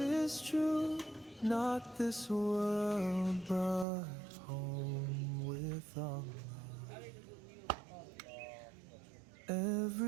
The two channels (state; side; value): drops out; left; at 3.9 s